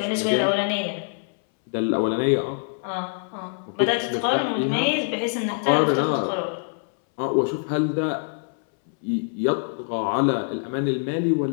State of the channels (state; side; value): silent; right; 62 dB below the other